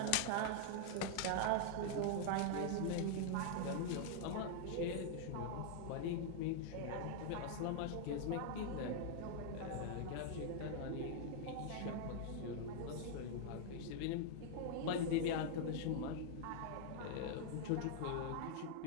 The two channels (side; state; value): both; different; correlation -0.01